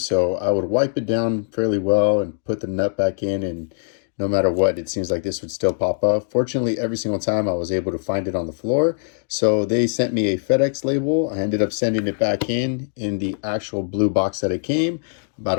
So I would wipe it down fairly well and put the nut back in, and no matter what, it seems like this would still pop up. Fortunately, every single time I was able to find it on the floor. So they sent me a FedEx label. I ended up sending it back in the actual blue box that it came.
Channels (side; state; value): right; silent; digital silence